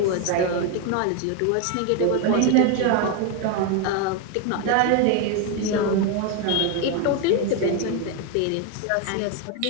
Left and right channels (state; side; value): different; both; correlation 0.01